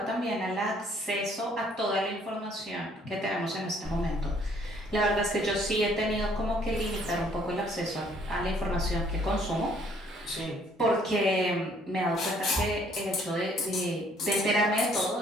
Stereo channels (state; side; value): normal; both; correlation 0.62